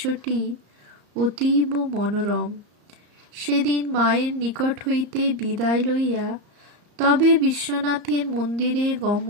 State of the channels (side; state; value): left; late; 34 ms